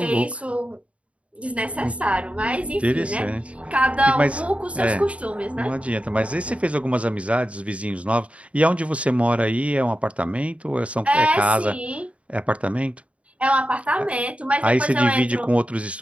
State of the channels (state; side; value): late; left; 0.063 ms